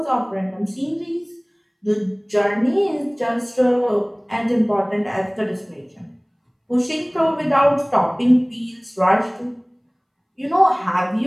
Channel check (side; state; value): both; identical; correlation 1.00